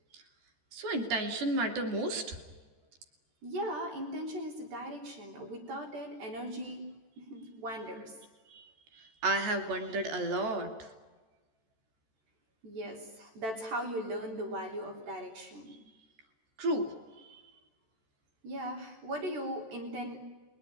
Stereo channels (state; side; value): late; left; 13 ms